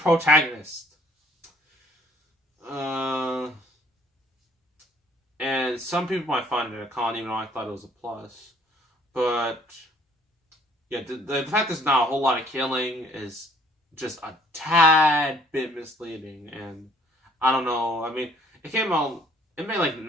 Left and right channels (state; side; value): normal; both; correlation 0.60